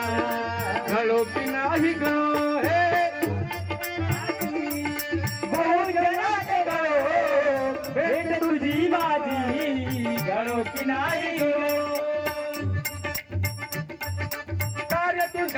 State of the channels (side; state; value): both; identical; correlation 1.00